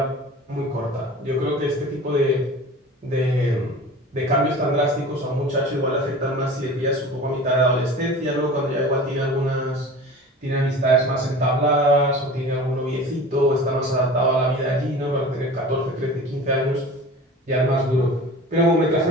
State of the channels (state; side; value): normal; both; correlation 0.38